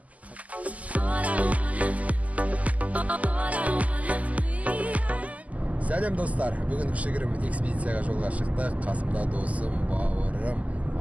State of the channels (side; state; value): left; late; 0.073 ms